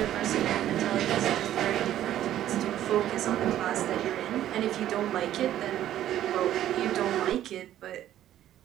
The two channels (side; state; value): left; quieter; 12.2 dB